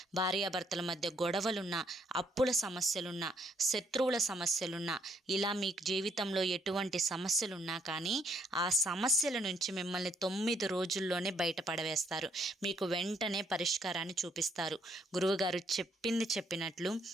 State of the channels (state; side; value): normal; both; correlation 0.69